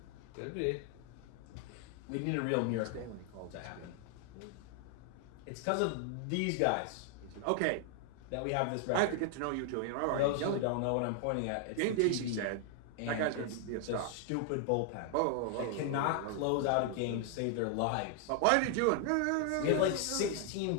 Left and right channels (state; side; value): different; both; correlation 0.00